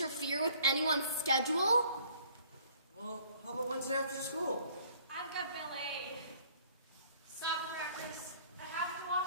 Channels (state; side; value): inverted; both; correlation -0.58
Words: with anyone's schedule. Well, how about Wednesday after school? I've got ballet. Soccer practice. I have to